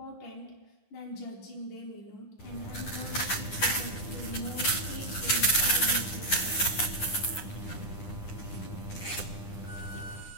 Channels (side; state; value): right; late; 9.8 ms